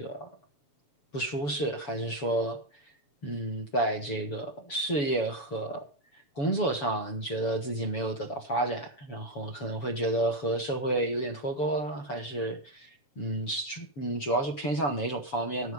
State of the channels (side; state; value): right; late; 7.0 ms